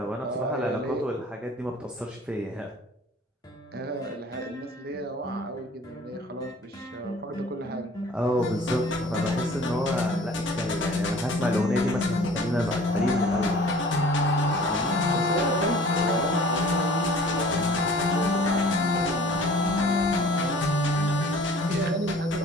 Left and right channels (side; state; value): both; normal; correlation 0.48